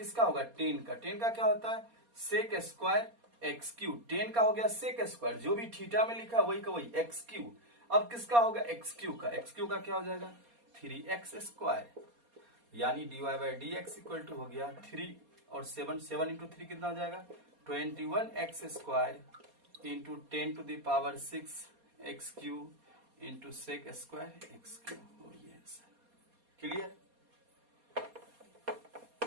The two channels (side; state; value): left; late; 4.2 ms